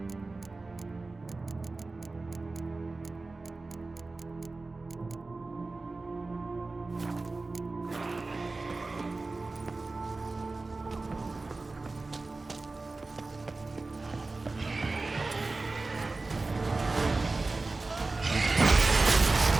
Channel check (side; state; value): left; quieter; 3.5 dB